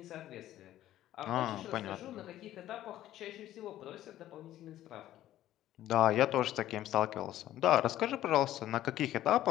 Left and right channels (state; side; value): quieter; right; 13.4 dB